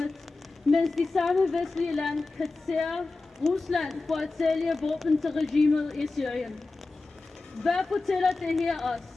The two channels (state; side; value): quieter; right; 3.5 dB